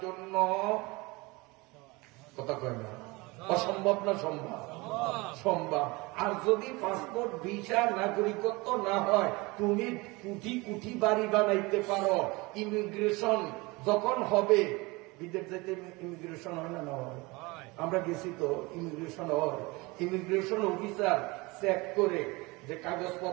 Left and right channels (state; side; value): quieter; left; 24.2 dB